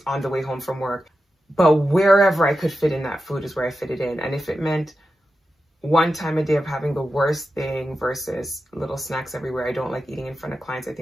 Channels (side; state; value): both; normal; correlation 0.90